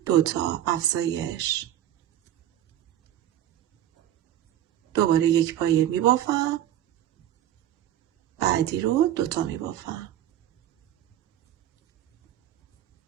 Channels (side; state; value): left; quieter; 11.9 dB